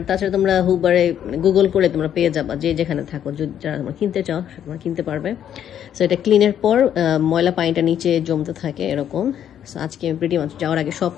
তাছাড়া তোমরা হুবারে গুগল করে তোমরা পেয়ে যাবা, যে যেখানে থাকো, যারা তোমরা কিনতে চাও তোমরা কিনতে পারবে। সো এটা ক্লিনের পর ময়লা পানিটা নিচে জমতে থাকে এরকম। সো আজকে আমি প্রিটি মাছ যাওয়ার আগে সব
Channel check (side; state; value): right; quieter; 9.9 dB